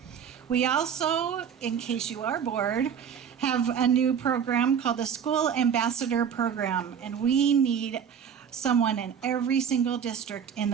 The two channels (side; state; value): left; quieter; 7.7 dB